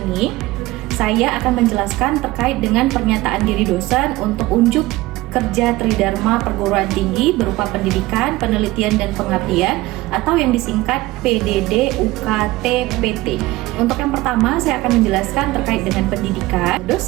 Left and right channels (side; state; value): left; quieter; 19.1 dB